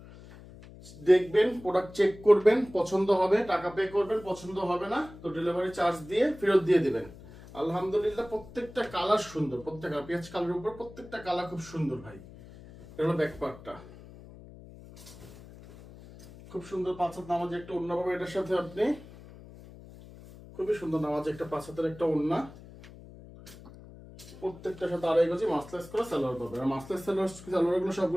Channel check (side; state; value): left; noise; hum, 18 dB below the sound